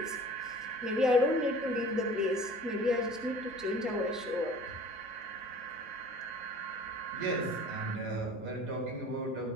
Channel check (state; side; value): normal; both; correlation 0.45